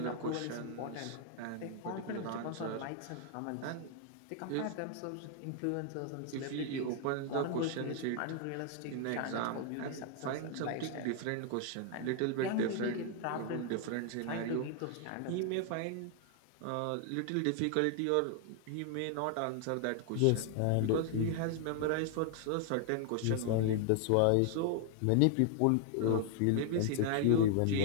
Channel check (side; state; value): both; different; correlation 0.00